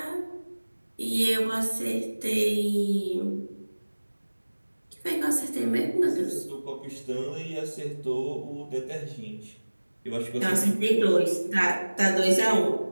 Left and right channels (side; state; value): both; inverted; correlation -1.00